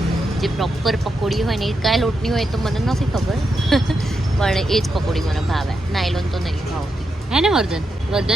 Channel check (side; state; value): both; normal; correlation 0.85